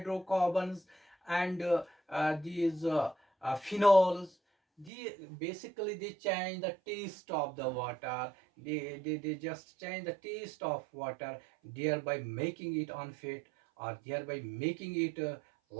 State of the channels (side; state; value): left; drops out; at 4.9 s